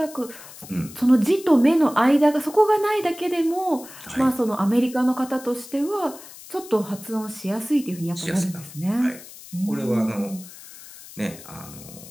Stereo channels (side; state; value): left; noise; hiss, 17 dB below the sound